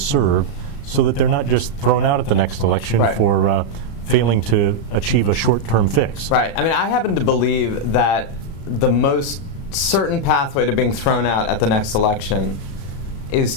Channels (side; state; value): right; late; 35 ms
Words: so that they're not just thrown out at the next election for failing to achieve a short-term fix? Right. I mean, I happen to believe that the most certain pathway to being thrown out at the next election is